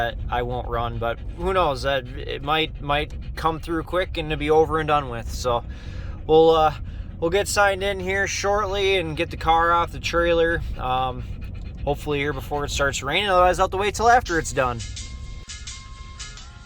won't run, but who knows, that it might come through quick and to be over and done with. So we'll get signed in here shortly and get the car off the trailer. Hopefully here before it starts raining, otherwise I'll have to wait till after it's done.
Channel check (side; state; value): both; identical; correlation 1.00